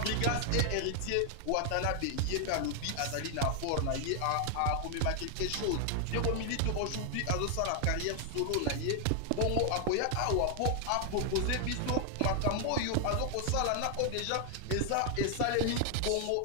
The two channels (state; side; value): different; both; correlation 0.00